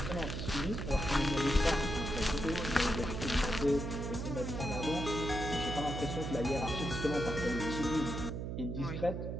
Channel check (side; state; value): right; noise; hum, 4 dB below the sound